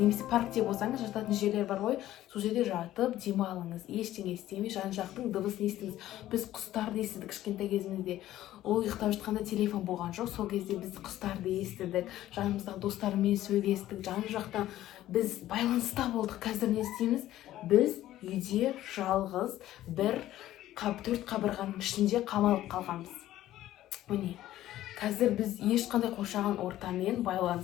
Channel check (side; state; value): right; quieter; 14.0 dB